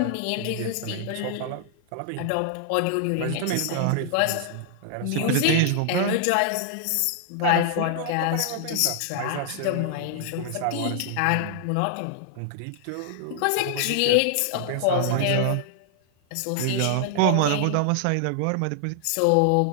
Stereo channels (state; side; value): different; both; correlation -0.01